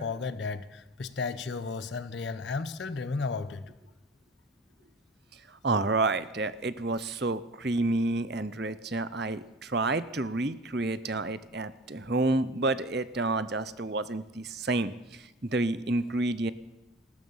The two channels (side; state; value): both; normal; correlation 0.37